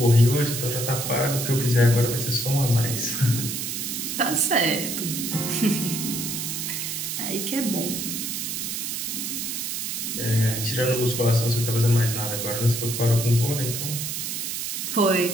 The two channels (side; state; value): right; noise; hiss, 3 dB below the sound